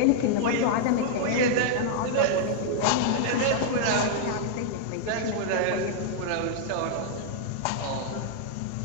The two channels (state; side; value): different; both; correlation -0.01